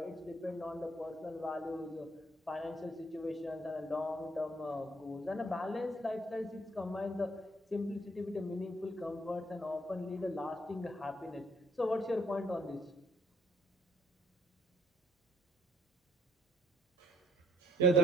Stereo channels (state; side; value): normal; both; correlation 0.66